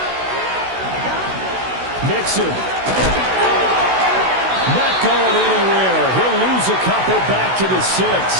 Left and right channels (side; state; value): left; late; 16 ms